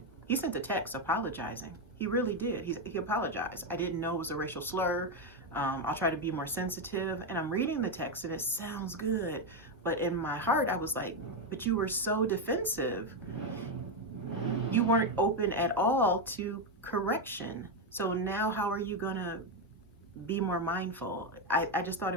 he sent a text apologizing. He really did. He apologized. I didn't know it was a racial slur. I'll try to be more sensitive. And I'm reading the text and it sounds good. But in my heart, I was like, but you were so defensive. You weren't open at all to correction. So now how are you gonna be more mindful? I just thought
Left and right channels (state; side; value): normal; both; correlation 0.06